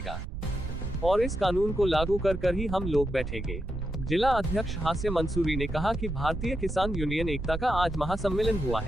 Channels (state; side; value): noise; right; rumble, 6 dB below the sound